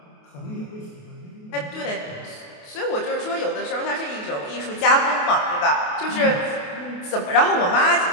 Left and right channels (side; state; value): right; late; 28 ms